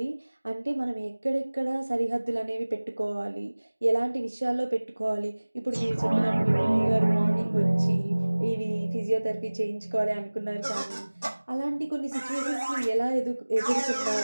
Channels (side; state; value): both; inverted; correlation -1.00